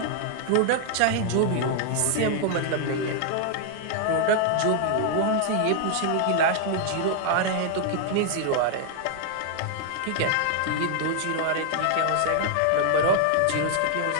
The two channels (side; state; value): both; different; correlation 0.00